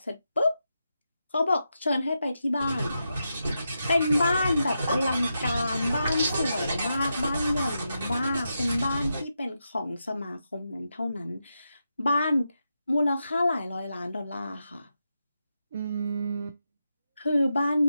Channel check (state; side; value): inverted; both; correlation -0.87